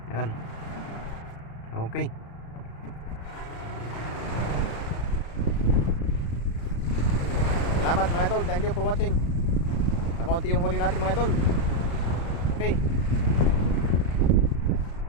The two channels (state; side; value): late; right; 35 ms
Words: Yan. Okay. Salamat mga idol. Thank you for watching. Nakaunti yung huli natin mga idol. Okay.